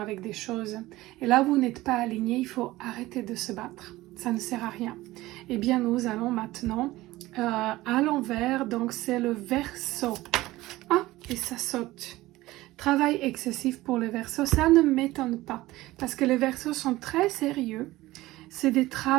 des choses. Et là, vous n'êtes pas aligné, il faut arrêter de se battre. Ça ne sert à rien. Eh bien, nous allons maintenant à l'envers, donc c'est le Verseau. Ah, et ça saute. Travail excessif pour le Verseau, ça ne m'étonne pas, parce que les Verseaux sont très sérieux. C'est des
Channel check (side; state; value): left; quieter; 17.9 dB